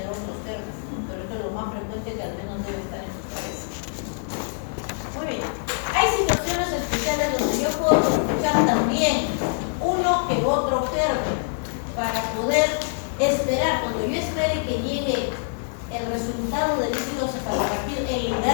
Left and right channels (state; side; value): silent; right; 62 dB below the other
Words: otros términos, ¿no? Pero esto es lo más frecuente que al menos debe estar en tu cabeza. Muy bien. Hay situaciones especiales donde yo puedo escuchar también uno que otro germen para poder esperar, cuando yo espere que llegue el resultado del líquido cefalorraquídeo, el